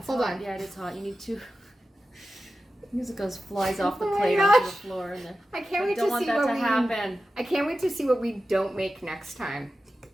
Hold hot. on. Yeah, it is hot. You need to. Music flies off the Oh my plate onto the gosh. floor, and then I can't I wait don't to want see that what to we. happen. I can't wait to see what we don't make next time.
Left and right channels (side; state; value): both; normal; correlation 0.93